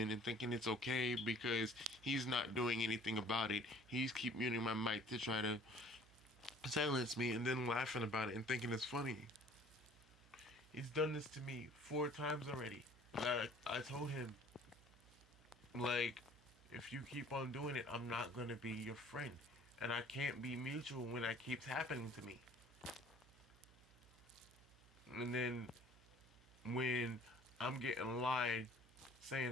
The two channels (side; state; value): right; noise; hum, 24 dB below the sound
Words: and thinking it's okay because he's not doing anything about it. He's keep muting my mic to try to silence me, and then laughing about it and thinking it's funny. He's done this to me 4 times already. I told him, like, if you keep on doing it, I'm not gonna be your friend, and I can't be mutual when that keeps happening to me. And then when I'm getting lied